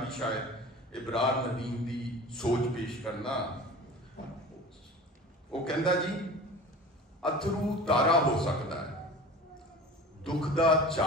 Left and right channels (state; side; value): normal; both; correlation 0.39